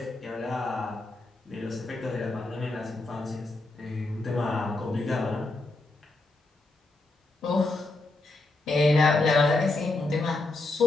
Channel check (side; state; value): right; quieter; 3.0 dB